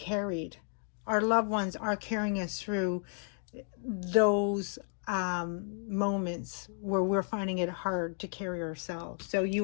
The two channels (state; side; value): silent; right; 56 dB below the other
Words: Our loved ones are carrying us through those moments where we're finding it hard to carry ourselves. So